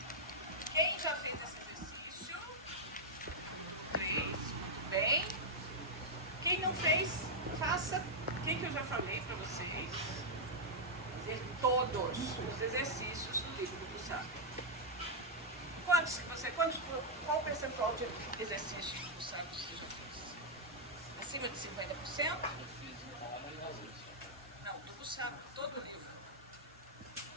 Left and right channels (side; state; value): both; normal; correlation -0.05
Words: Quem já fez esse exercício? Fez, muito bem. Quem não fez, faça. O que eu já falei para vocês? Fazer todos os exercícios do livro do Gustavo. Qual o percentual de exercícios do Gustavo você já fez? Acima de 50%? Eu fiz uma e às vezes. Não, do Gustavo, todo o livro.